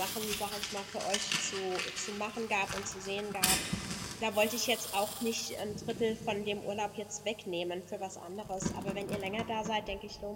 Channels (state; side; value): identical; both; correlation 1.00